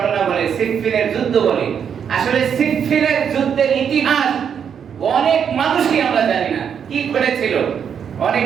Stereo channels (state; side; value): quieter; left; 7.7 dB